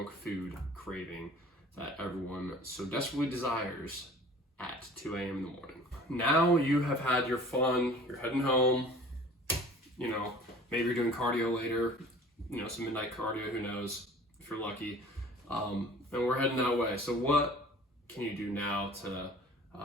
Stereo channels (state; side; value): normal; both; correlation 0.46